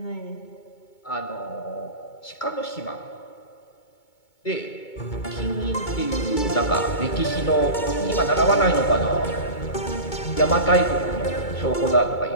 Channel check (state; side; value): late; right; 2.2 ms